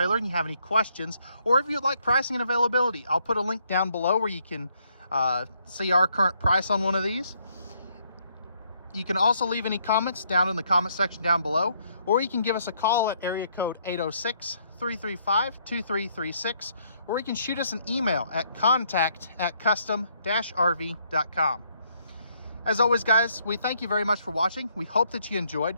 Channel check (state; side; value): inverted; both; correlation -0.70